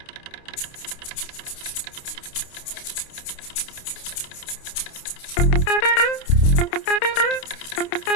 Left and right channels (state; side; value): late; right; 29 ms